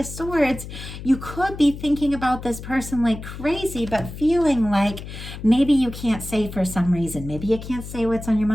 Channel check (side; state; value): left; noise; hum, 11 dB below the sound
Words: Swords, you could be thinking about this person like crazy, but feeling like maybe you can't say for some reason. Maybe you can't say what's on your